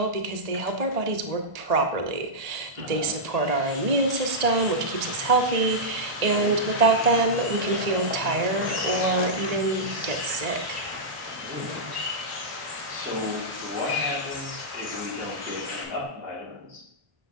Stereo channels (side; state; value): left; late; 1.8 ms